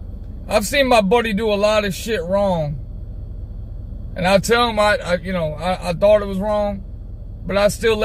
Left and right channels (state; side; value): identical; both; correlation 1.00